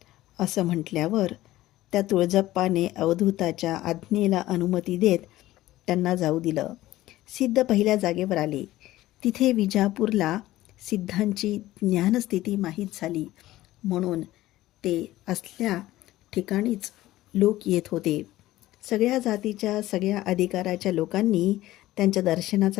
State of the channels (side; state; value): right; quieter; 16.0 dB